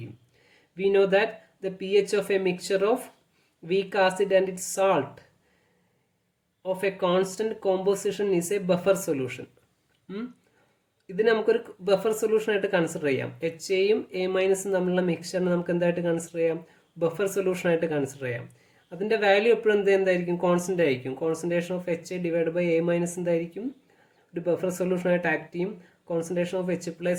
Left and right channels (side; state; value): both; identical; correlation 1.00